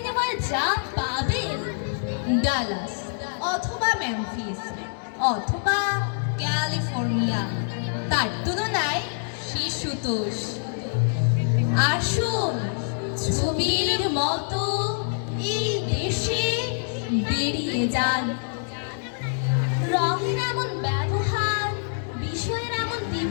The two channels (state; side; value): silent; right; digital silence